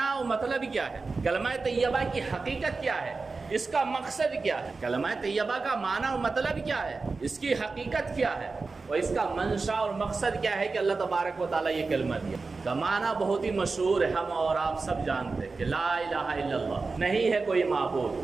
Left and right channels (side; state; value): left; quieter; 4.1 dB